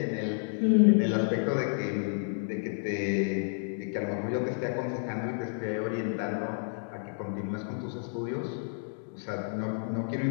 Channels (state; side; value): silent; right; digital silence